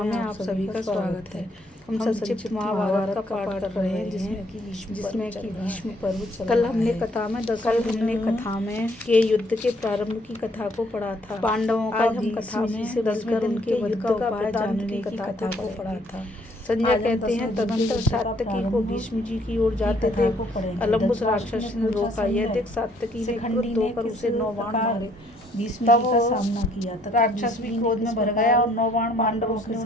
में आप सभी का स्वागत है। हम संक्षिप्त महाभारत का पाठ कर रहे हैं जिसमें कि भीष्म पर्व। कल हमने कथा में के युद्ध के प्रारंभ की कथा को पढ़ा था। पांडवों का हम कथा में से बचकर उनके युद्ध का उपाय जानने की कथा को पढ़ा था। संजय कहते हैं तदंतर सात्यकी को भीष्म जी की ओर जाते थे अलम्बुस राक्षस ने रोका। यह देख सात्यकी ने क्रुद्ध होकर उसे 9 बाण मारे। भीष्म जी का सामना किया तथा राक्षस भी क्रोध में भर गया और 9 बाण पांडवों के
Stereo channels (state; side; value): normal; both; correlation 0.65